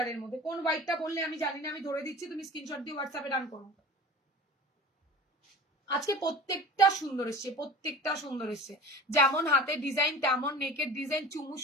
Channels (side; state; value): both; normal; correlation 0.38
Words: মধ্যে। কোন হোয়াইটটা বললে আমি জানি না, আমি ধরে দিচ্ছি, তুমি স্ক্রিনশট দিয়ে হোয়াটসঅ্যাপে ডান করো। আজকে প্রত্যেকটা সুন্দর এসছে, প্রত্যেকটা সুন্দর এসছে। যেমন হাতের ডিজাইন তেমন নেকের ডিজাইন, চুমু